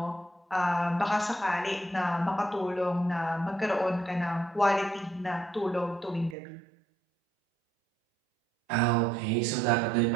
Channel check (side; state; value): left; drops out; at 6.4 s